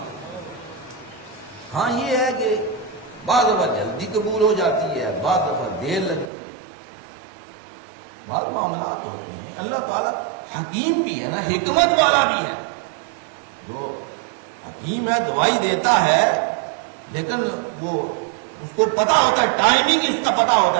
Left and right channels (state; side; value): drops out; left; at 6.3 s